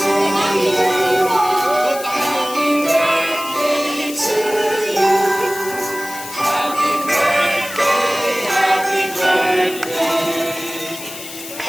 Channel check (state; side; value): noise; left; hiss, 12 dB below the sound